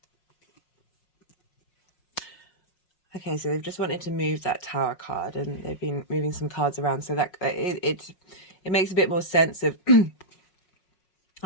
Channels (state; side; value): late; right; 5.5 ms